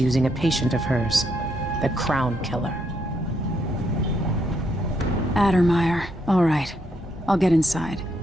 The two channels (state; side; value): normal; both; correlation 0.76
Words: a patient of hers, the Crown Killer. Addermeyer. All right. I'll get inside.